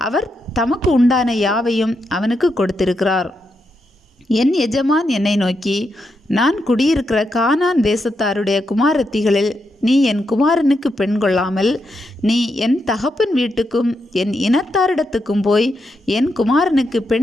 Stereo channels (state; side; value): normal; both; correlation 0.83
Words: அவர் தமக்கு உண்டான யாவையும் அவனுக்கு கொடுத்திருக்கிறார். என் எஜமான் என்னை நோக்கி, நான் குடியிருக்கிற கானான் தேசத்தாருடைய குமாரத்திகளில் நீ என் குமாரனுக்கு பெண் கொள்ளாமல் நீ என் தகப்பன் வீட்டுக்கும் என் இனத்தாரிடத்துக்கும் போய் என் குமாரனுக்கு